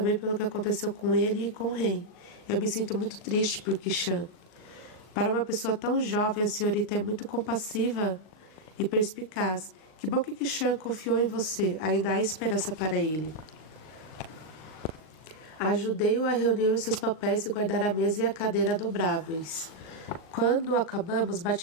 pelo que aconteceu com ele e com Ren. Eu me sinto muito triste por Kishan. Para uma pessoa tão jovem, a senhorita é muito compassiva e perspicaz. Que bom que Kishan confiou em você. Ainda há esperança para ele. Ajudei-o a reunir os seus papéis e guardar a mesa e a cadeira dobráveis. Quando acabamos,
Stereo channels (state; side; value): late; right; 38 ms